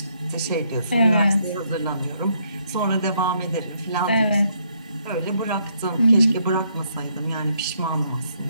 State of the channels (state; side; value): inverted; both; correlation -0.73